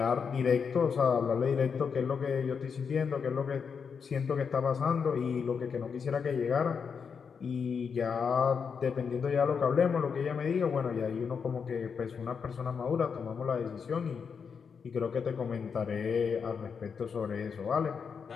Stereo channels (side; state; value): right; quieter; 6.2 dB